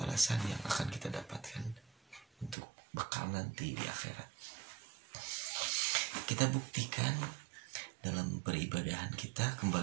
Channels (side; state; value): left; drops out; at 2.6 s